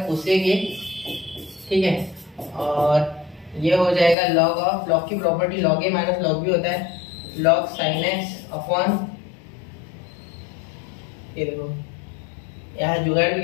कोसेक ये, ठीक है, और ये हो जाएगा लॉग ऑफ, लॉग की प्रॉपर्टी लॉग ए माइनस लॉग बी होता है, लॉग साइन एक्स अपॉन, ये देखो यहाँ जुगाड़ भी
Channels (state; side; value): drops out; right; at 4.2 s